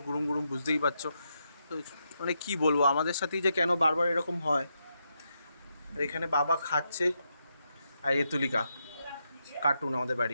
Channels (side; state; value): both; inverted; correlation -0.83